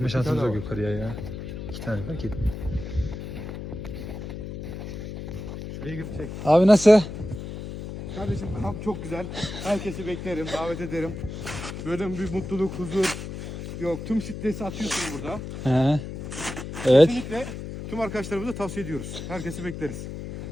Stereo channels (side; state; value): left; noise; hum, 8 dB below the sound